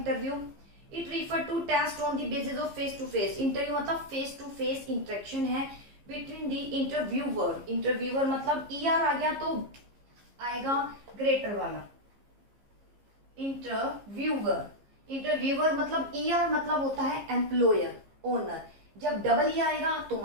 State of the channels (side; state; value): left; late; 15 ms